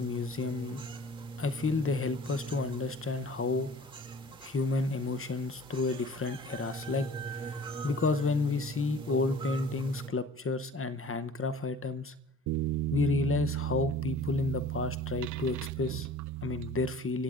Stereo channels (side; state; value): both; normal; correlation 0.46